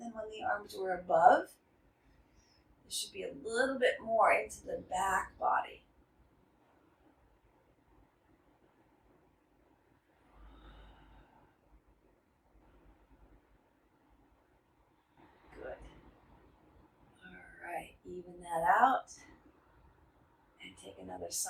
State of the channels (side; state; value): both; identical; correlation 1.00